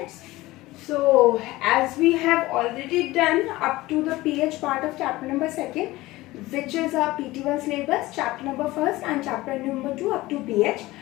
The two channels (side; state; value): right; quieter; 18.7 dB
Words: So as we have already done up to the PH part of chapter number 2nd, which is our PT1 syllabus, chapter number 1st and chapter number 2 up to PH,